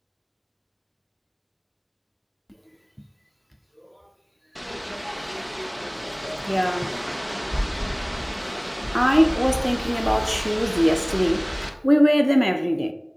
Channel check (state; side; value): identical; both; correlation 1.00